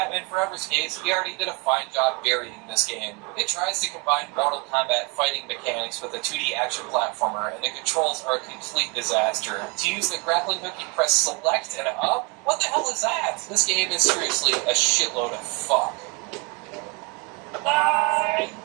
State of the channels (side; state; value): left; quieter; 29.2 dB